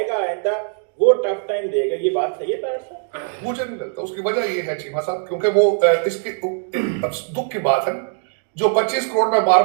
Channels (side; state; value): left; silent; 65 dB below the other